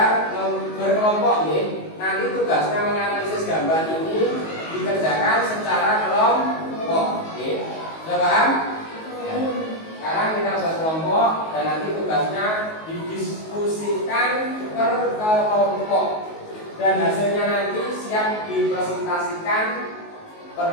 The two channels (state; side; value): late; right; 19 ms